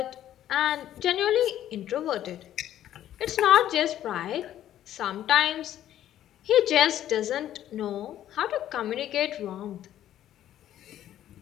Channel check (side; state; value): right; quieter; 11.9 dB